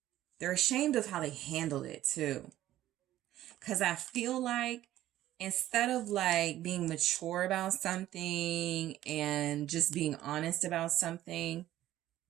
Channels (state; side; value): quieter; left; 13.8 dB